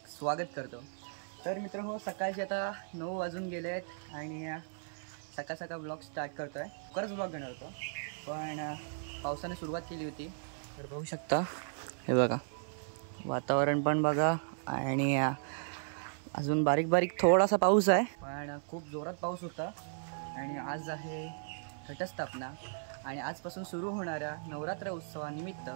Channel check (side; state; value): left; silent; 54 dB below the other